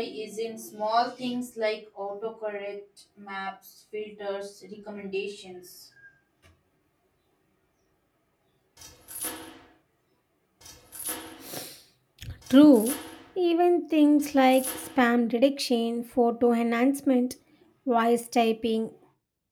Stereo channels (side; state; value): both; identical; correlation 1.00